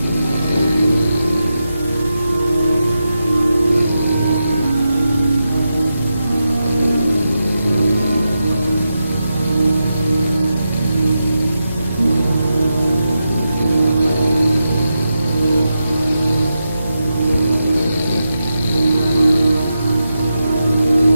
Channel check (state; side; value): inverted; both; correlation -0.88